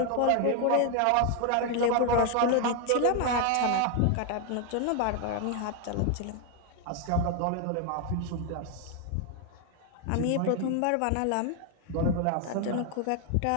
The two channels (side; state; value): both; different; correlation 0.00